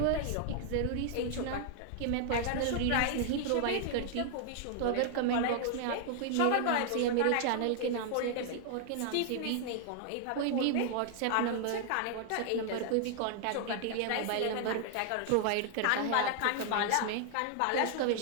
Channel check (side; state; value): both; different; correlation 0.00